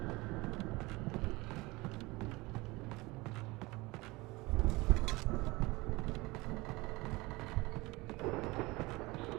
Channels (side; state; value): left; quieter; 22.5 dB